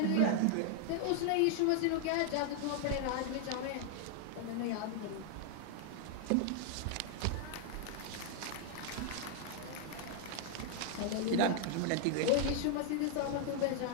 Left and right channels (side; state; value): both; different; correlation 0.00